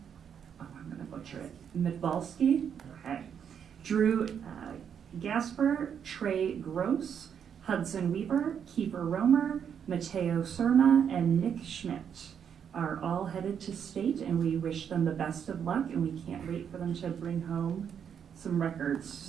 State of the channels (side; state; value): left; quieter; 7.9 dB